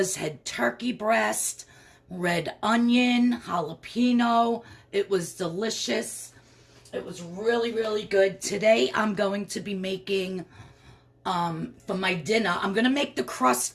head turkey breast, red onion, jalapeno. It was delicious. It was really, really good. Today I'm going to be making, for my dinner, I'm going to make the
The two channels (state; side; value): identical; both; correlation 1.00